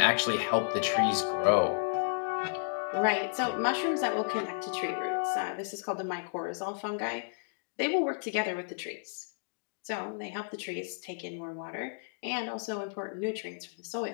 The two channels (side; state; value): right; silent; digital silence